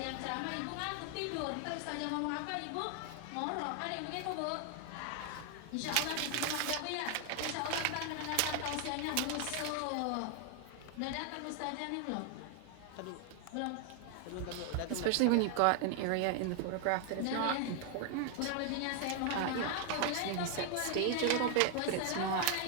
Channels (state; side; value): different; both; correlation 0.00